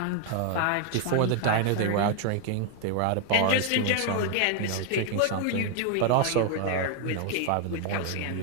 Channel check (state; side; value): different; both; correlation 0.00